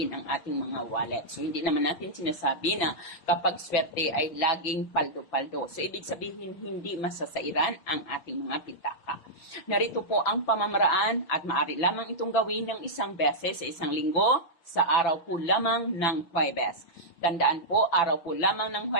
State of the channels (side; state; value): right; late; 5.9 ms